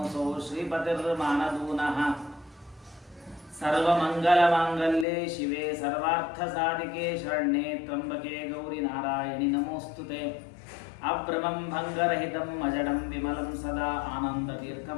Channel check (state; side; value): drops out; right; at 5.1 s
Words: श्रीपतिर्मानदूनः सर्वमङ्गलमाङ्गल्ये शिवे सर्वार्थसाधिके शरण्ये त्र्यम्बके गौरि नारायणि नमोऽस्तुते। अभ्रमं भङ्गरहितं अजडं विमलं सदा